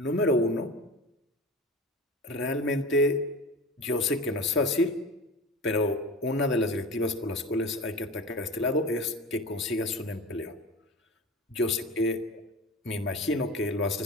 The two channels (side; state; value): both; normal; correlation 0.33